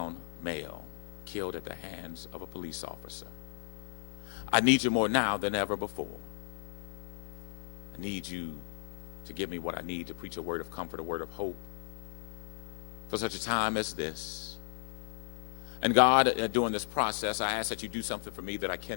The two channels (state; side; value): silent; right; digital silence